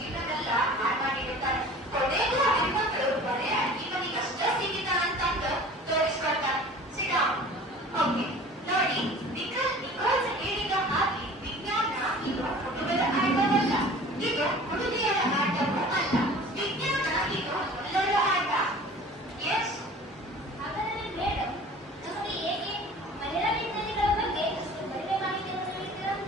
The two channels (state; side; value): normal; both; correlation 0.44